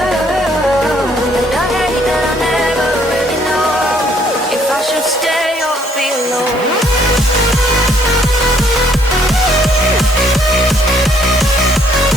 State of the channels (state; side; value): normal; both; correlation 0.65